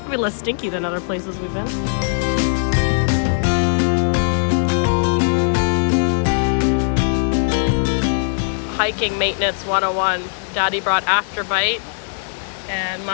less stinky than other places we've been. Hiking maintenance 101. Daddy brought Afterbite, and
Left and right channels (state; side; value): silent; right; 66 dB below the other